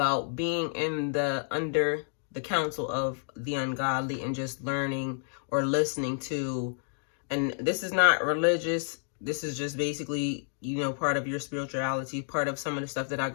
being under the counsel of the ungodly and just learning or listening to, and this is not religious, this is just basically, part of your spirituality, part of some of the stuff that I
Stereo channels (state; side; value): silent; right; digital silence